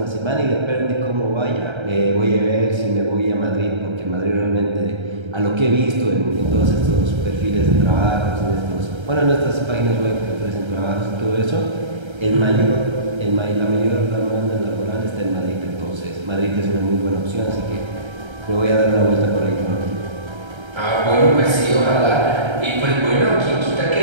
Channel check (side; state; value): left; late; 1.3 ms